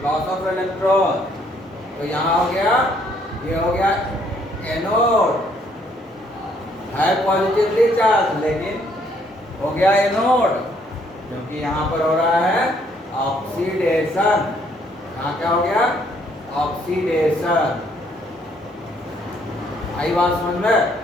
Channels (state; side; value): normal; both; correlation 0.67